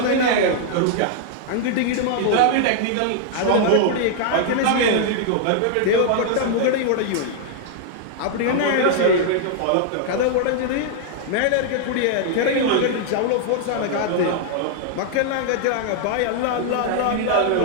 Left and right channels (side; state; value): both; different; correlation -0.01